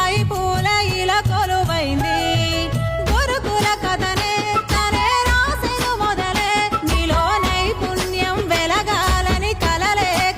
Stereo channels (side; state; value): both; identical; correlation 1.00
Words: గురుకుల కథనే తనే రాసెను మొదలే నీలో నైపుణ్యం వెలగాలని కలలే